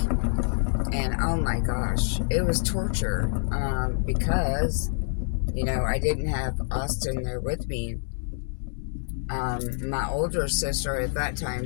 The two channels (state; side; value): silent; right; digital silence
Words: And oh my gosh, it was torture, because I didn't have Austin there with me. My older sister at that time,